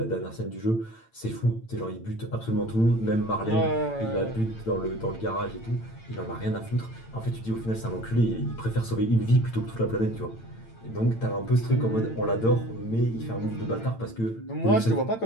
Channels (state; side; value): late; right; 8.9 ms